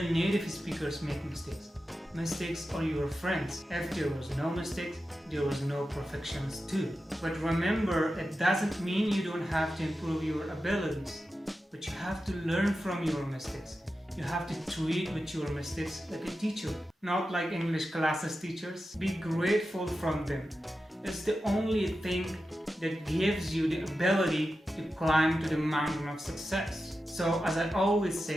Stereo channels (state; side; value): normal; both; correlation 0.91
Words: native speakers make mistakes. Mistakes are your friends. If there was no mistakes, there was no perfections too. But remember, it doesn't mean you don't have to improve your abilities, but you have to learn from your mistakes. You have to treat with your mistakes like a teacher, not like English classes teachers. Be grateful from them. It's the only thing that gives you the ability to climb to the mountain of success. So as I always